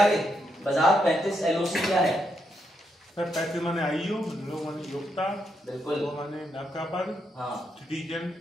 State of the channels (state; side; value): normal; both; correlation 0.80